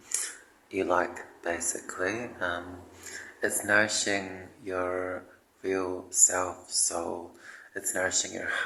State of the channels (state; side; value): identical; both; correlation 1.00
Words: you like, basically. It's nourishing your real self, soul. It's nourishing your